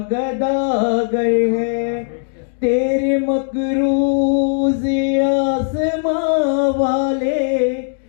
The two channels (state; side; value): silent; right; digital silence